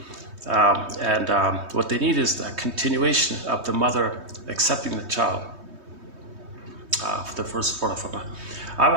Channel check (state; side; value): late; left; 3.2 ms